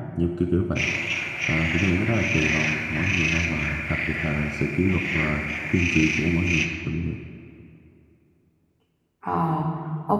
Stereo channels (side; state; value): both; identical; correlation 1.00